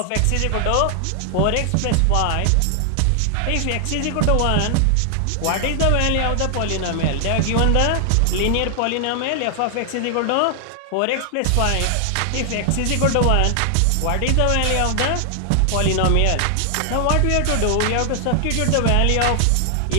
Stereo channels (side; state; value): both; different; correlation 0.00